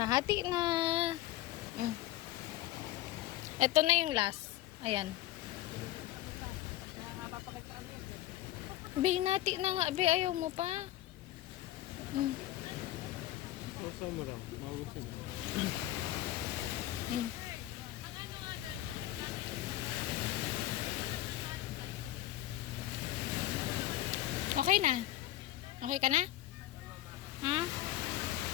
Hati na. Ito na yung last. Ayan. Binati na nga. Be, ayaw mo pa. Masa mo lang. Magusin. Okay na? Okay ka na? Ha?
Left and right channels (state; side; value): quieter; right; 14.7 dB